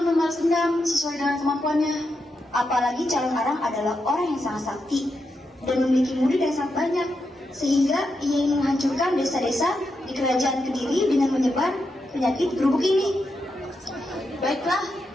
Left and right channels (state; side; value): normal; both; correlation 0.85